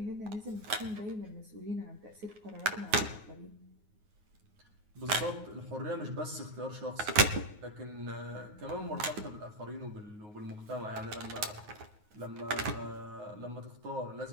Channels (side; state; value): left; late; 9.5 ms